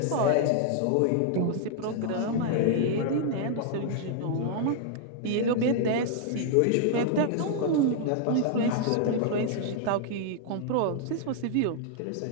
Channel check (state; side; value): different; both; correlation 0.00